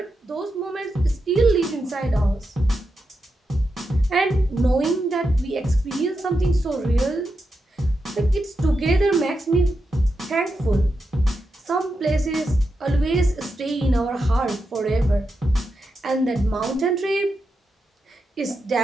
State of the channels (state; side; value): normal; both; correlation 0.87